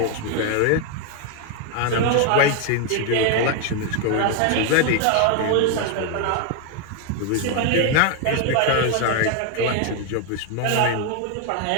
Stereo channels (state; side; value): different; both; correlation 0.01